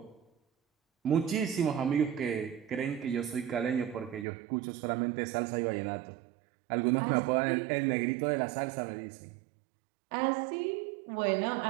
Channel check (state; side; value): drops out; left; at 4.2 s